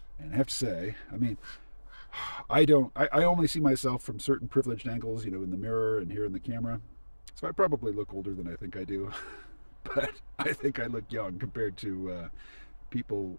And I have to say, I only see myself from certain privileged angles, in the mirror and here in the camera. So I probably look older than I think I do. But I think I look young compared to people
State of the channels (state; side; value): inverted; both; correlation -1.00